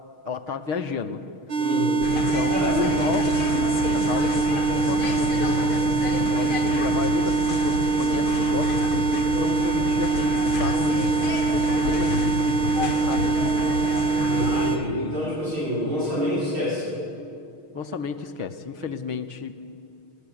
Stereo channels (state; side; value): late; left; 6.4 ms